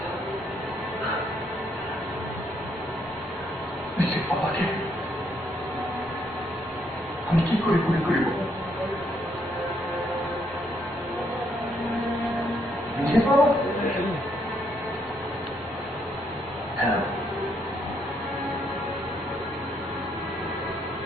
নিজের বাবাকে আমি কি করে গুলি করিব? নিজের বাবা? হ্যাঁ,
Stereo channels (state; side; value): normal; both; correlation 0.73